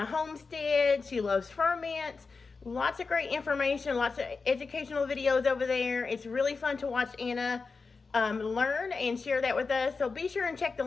homestead, she loves ferments, lots of great information, lots of educational videos over there. It's really fun to watch Anna learn and share that with us. So be sure and check the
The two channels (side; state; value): right; quieter; 4.5 dB